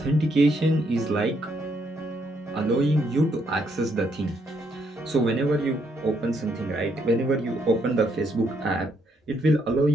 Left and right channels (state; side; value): normal; both; correlation 0.73